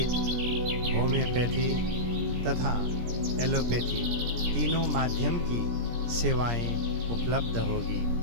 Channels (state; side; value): late; left; 17 ms